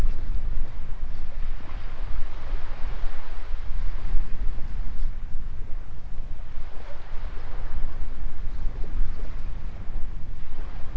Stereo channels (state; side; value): identical; both; correlation 1.00